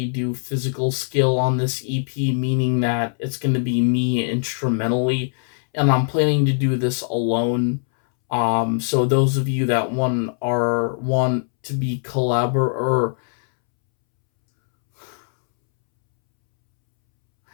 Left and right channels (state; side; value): silent; right; 65 dB below the other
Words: do physical skill on this EP, meaning that it's going to be me instrumentally, and I'm planning to do this alone. So those of you that want to be or